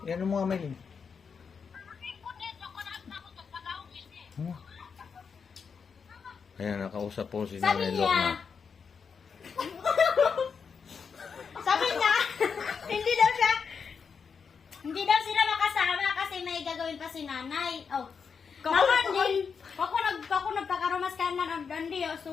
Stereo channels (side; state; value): right; quieter; 6.0 dB